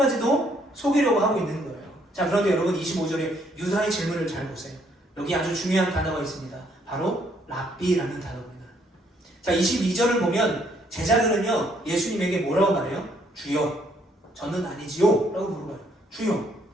속이려고 하고 있는 거예요. 자, 그런데 여러분 25절에 유다의 질문을 잘 보세요. 여기 아주 중요한 단어가 있습니다. 바로 랍비라는 단어입니다. 자, 22절을 보면 제자들은요 예수님에게 뭐라고 말해요? 주여, 저는 아니지요 라고 물어봐요. 주여,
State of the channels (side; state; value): both; normal; correlation 0.68